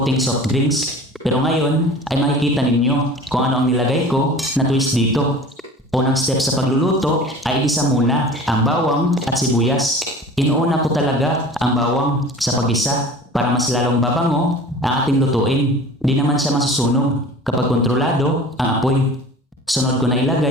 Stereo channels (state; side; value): normal; both; correlation 0.41